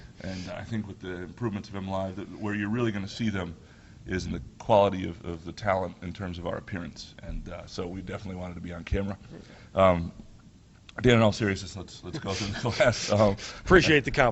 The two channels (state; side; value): identical; both; correlation 1.00